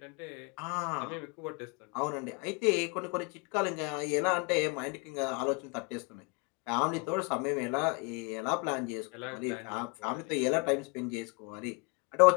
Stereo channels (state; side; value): quieter; right; 30.9 dB